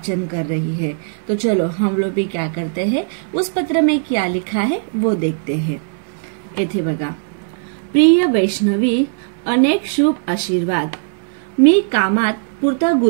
कर रही है। तो चलो हम लोग भी क्या करते हैं, उस पत्र में क्या लिखा है वो देखते हैं। येथे बघा, प्रिय वैष्णवी, अनेक शुभ आशीर्वाद। मी कामात पुरता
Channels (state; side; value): silent; left; digital silence